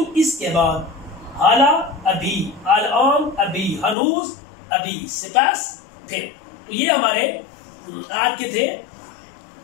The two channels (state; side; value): drops out; right; at 4.0 s